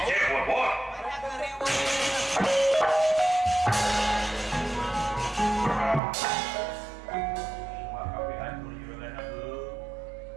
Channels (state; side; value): drops out; left; at 6.0 s